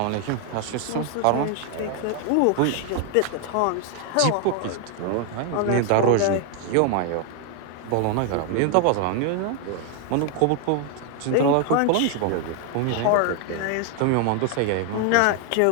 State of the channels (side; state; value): both; different; correlation 0.00